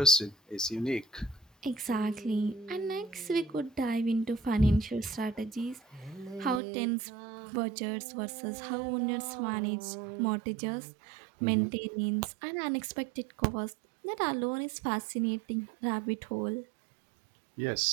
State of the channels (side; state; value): left; drops out; at 6.6 s